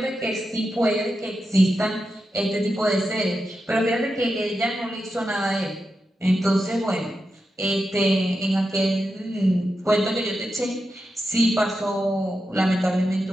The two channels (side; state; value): both; normal; correlation 0.88